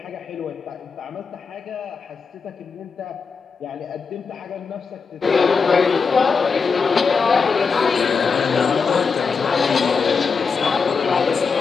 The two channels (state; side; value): quieter; right; 5.2 dB